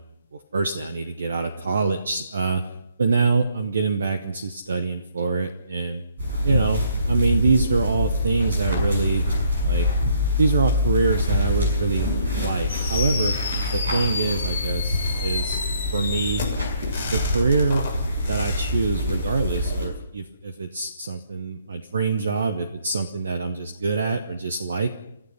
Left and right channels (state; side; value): inverted; both; correlation -0.68